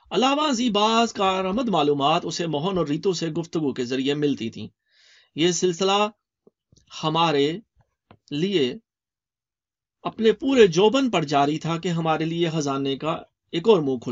علاوہ ازیں بعض کارآمد معلومات اسے موہن اور ریتو سے گفتگو کے ذریعے ملتی تھیں۔ یہ سلسلہ ہمارے لیے اپنے پورے جوبن پر جاری تھا کہ ہمارے لیے خزانے کا ایک اور منہ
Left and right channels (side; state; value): both; identical; correlation 1.00